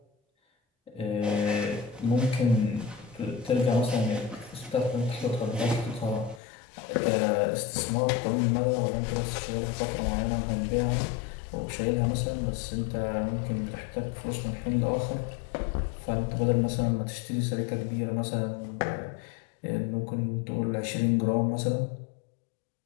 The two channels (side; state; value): right; drops out; at 6.4 s